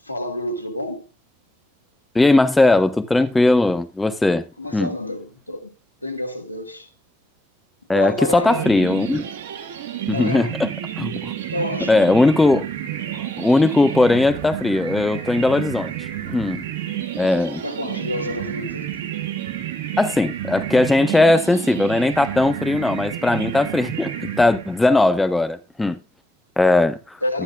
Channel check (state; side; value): normal; both; correlation 0.82